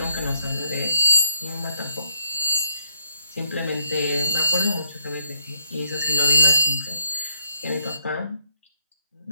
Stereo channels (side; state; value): both; inverted; correlation -0.72